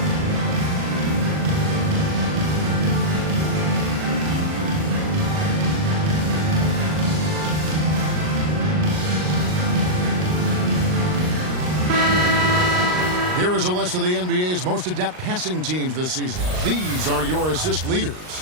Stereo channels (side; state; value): left; late; 39 ms